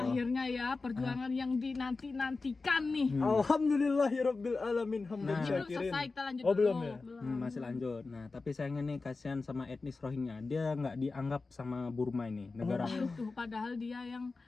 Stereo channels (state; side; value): quieter; right; 3.9 dB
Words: ya perjuangan yang dinanti-nantikan nih. Alhamdulillahirabbil alamin hamdan Nah. Belum syakirin. selesai, kita lanjut Oh, dulu. belum ya? Masih lanjut. Nah tapi sayangnya nih kasihan sama etnis Rohingya, dia nggak dianggap sama Burma ini negara. Tuh, padahal dia yang